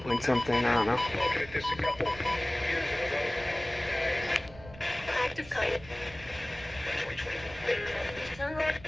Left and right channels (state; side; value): noise; right; rumble, 18 dB below the sound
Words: point something, I don't know. Active kite.